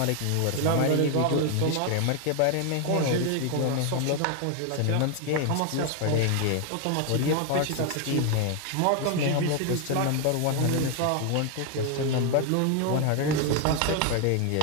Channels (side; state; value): both; different; correlation 0.01